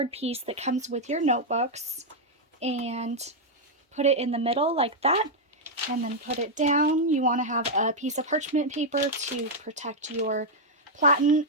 piece that comes with your notebooks and put it in the middle like that, and then put it down. You want to have a piece of parchment paper to protect your platen,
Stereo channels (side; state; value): both; normal; correlation -0.02